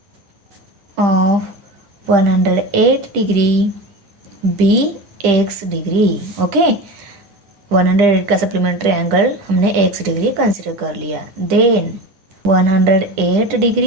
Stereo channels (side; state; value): left; late; 10 ms